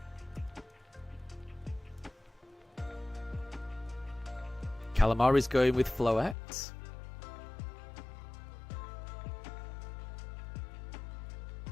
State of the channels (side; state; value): right; drops out; at 6.4 s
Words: Calamari's going with Floette.